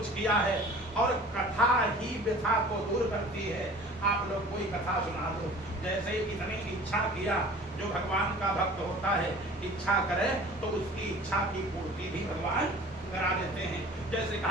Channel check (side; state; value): both; normal; correlation 0.44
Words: किया है, और कथा ही व्यथा को दूर करती है। आप लोग कोई कथा सुना दो। जैसे इतनी इच्छा किया, जो भगवान का भक्त होता है इच्छा करे तो उसकी इच्छा की पूर्ति भी भगवान करा देते हैं। जैसे